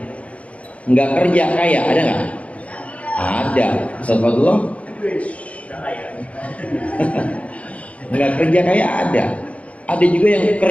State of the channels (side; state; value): right; late; 0.065 ms